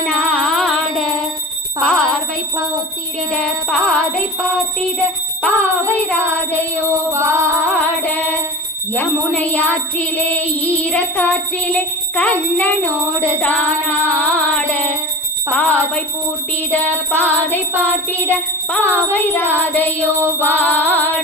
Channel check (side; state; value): both; normal; correlation 0.32